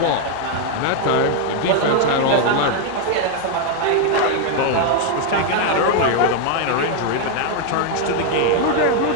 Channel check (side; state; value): both; different; correlation 0.00